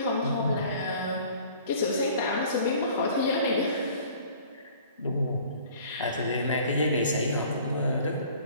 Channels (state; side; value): inverted; both; correlation -0.51